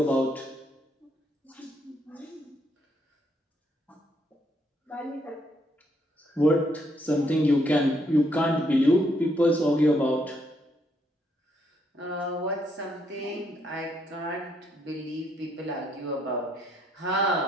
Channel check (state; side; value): normal; both; correlation 0.73